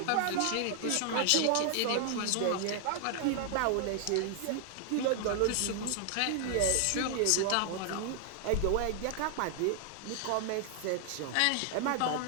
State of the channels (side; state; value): both; different; correlation 0.00